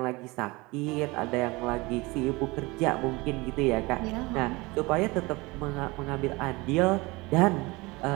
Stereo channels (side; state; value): left; quieter; 23.4 dB